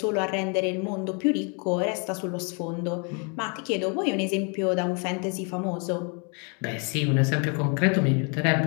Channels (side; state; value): right; quieter; 36.3 dB